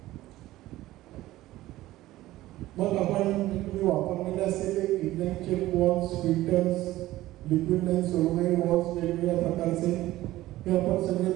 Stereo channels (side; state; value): left; quieter; 16.2 dB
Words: मग आपण तुम्ही वापरलेले असलेले inline check valves, filters, liquid line solenoid valves वेगवेगळ्या प्रकारचे हे आपण सगळे